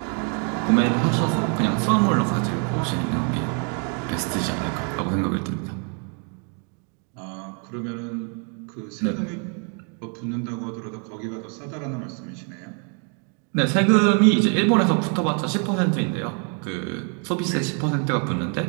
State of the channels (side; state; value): left; quieter; 39.7 dB